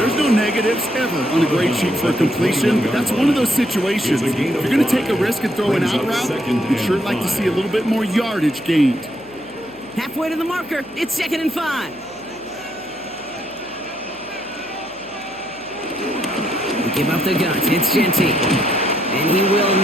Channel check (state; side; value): noise; right; hum, 28 dB below the sound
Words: no negatives ever on a grade sheet for a completion, but that's one of those situations. If you're going to take a risk and throw an out route, you'd sure like to see a little bit more yardage gained. Halfway to the marker, it's 2nd and 5. They give up the guts, it's Genty. And he will